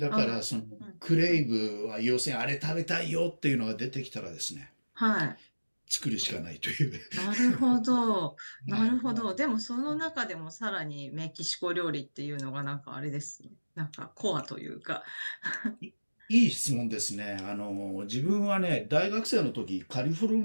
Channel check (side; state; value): both; inverted; correlation -1.00